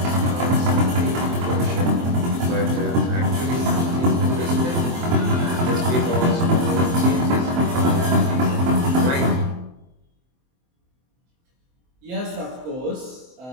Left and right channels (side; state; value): left; late; 23 ms